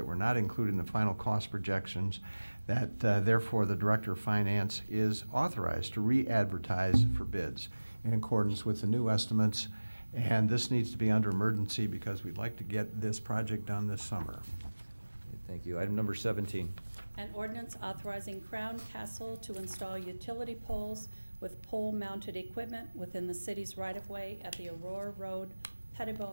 were not included in the final cost projections, that therefore the Director of Finance is authorized to re-advertise for bids in accordance with the new estimates. And this needs to be under emergency because we'd like to get this project done this summer. Thank you. Item number 17. An ordinance authorizing Crown Castle to install utility poles with pole-mounted equipment within the city's right-of-way at the Aurora Road,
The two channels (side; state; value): both; inverted; correlation -1.00